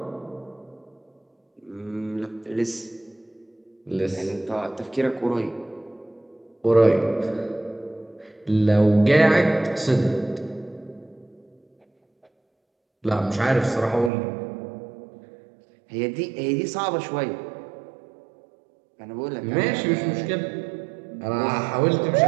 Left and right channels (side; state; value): left; drops out; at 14.1 s